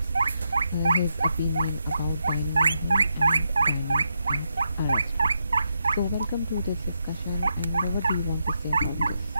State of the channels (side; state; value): both; inverted; correlation -0.83